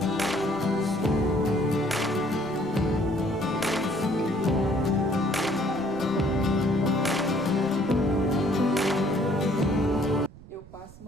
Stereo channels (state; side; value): noise; right; rumble, 20 dB below the sound